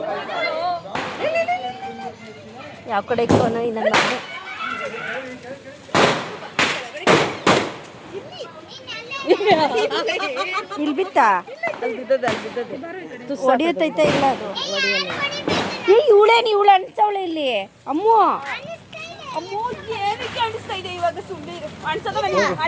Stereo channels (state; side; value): identical; both; correlation 1.00